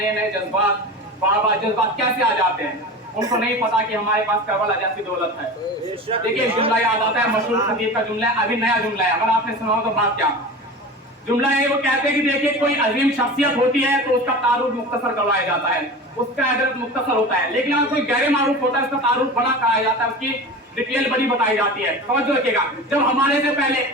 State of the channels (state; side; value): normal; both; correlation 0.32